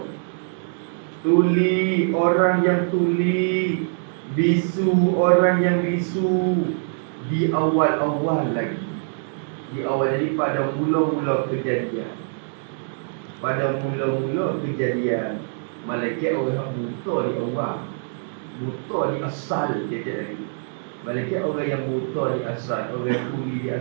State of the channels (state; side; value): silent; left; digital silence